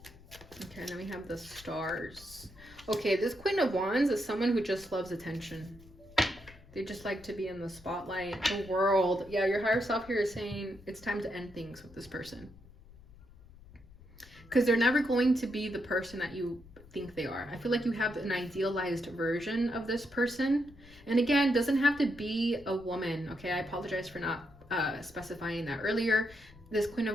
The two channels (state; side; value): noise; left; rumble, 22 dB below the sound